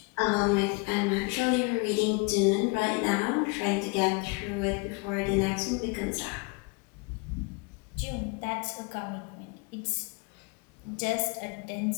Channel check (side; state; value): right; quieter; 30.5 dB